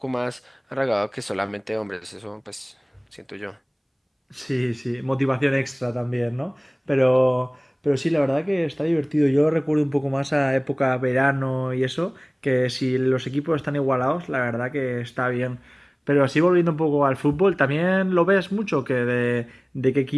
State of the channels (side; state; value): both; identical; correlation 1.00